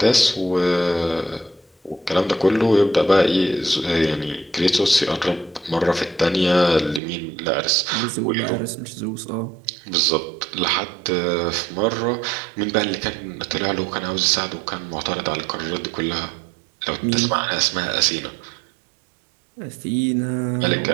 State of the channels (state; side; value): drops out; left; at 7.0 s